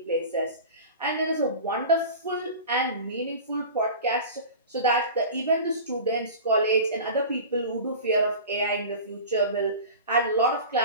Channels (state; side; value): inverted; both; correlation -0.35